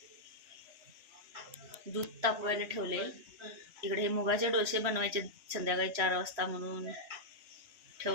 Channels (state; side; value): late; left; 3.1 ms